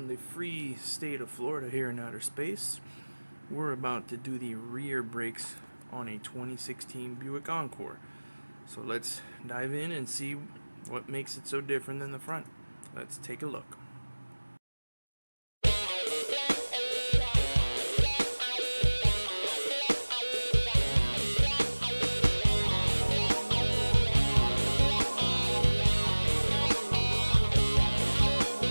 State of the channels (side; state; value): both; inverted; correlation -1.00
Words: the free state of Florida here in outer space, we're about to do the rear brakes on a 2016 Buick Encore. So let's dive in and see what makes it so different than the front. Let's take a look.